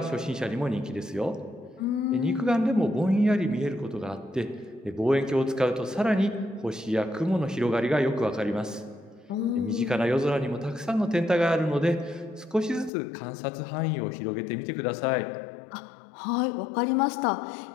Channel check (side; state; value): right; drops out; at 12.9 s